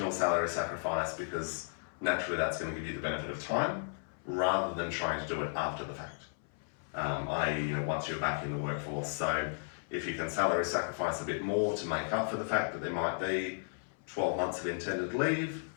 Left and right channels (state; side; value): silent; right; 55 dB below the other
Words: salary sacrifice, because naturally that's going to give you the benefit of time, rather than trying to do it after the fact. I.e., you know, once you're back in the workforce. So if you can salary sacrifice a bit more to make up for the fact that there might be 12 months of intended leave,